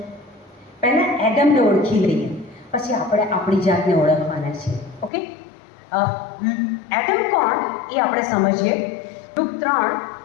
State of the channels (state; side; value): drops out; right; at 5.1 s